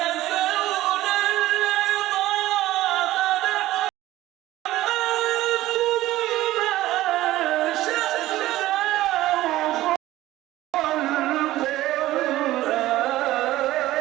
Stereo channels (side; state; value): left; quieter; 15.9 dB